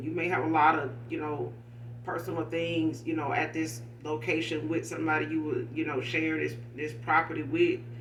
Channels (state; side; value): identical; both; correlation 1.00